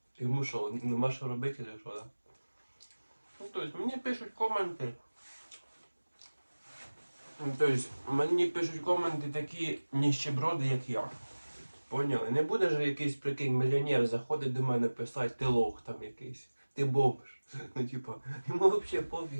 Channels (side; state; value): both; inverted; correlation -1.00